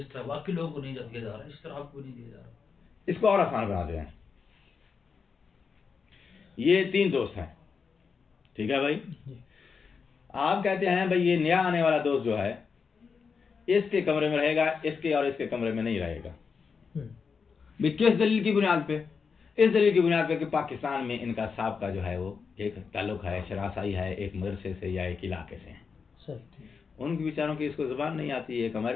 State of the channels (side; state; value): right; quieter; 5.5 dB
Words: तरह बाकी लोगों को नहीं दिया जा रहा, इस तरह आपको नहीं दिया जा रहा। इसको और आसान बना दें। ये तीन दोस्त हैं, ठीक है भाई? आप कहते हैं भाई ये नया आने वाला दोस्त जो है, इसके कमरे में रहेगा, इसके और इसके कमरे में नहीं रहेगा। भाई किस दलील की बुनियाद पे? इस दलील की बुनियाद पे कि पाकिस्तान में इनका साहब का जो है वो एक ताल्लुक है, शरासाई है, एक मदरसे से या एक इलाके से है। उनके बेचारों की इसको जुबान नहीं आती, एक